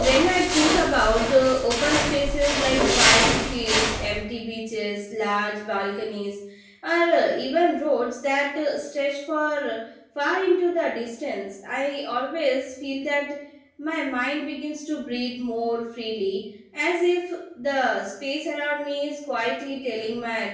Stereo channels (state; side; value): identical; both; correlation 1.00